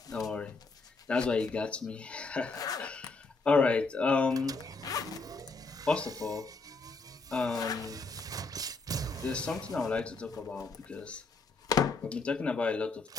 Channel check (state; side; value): quieter; right; 3.8 dB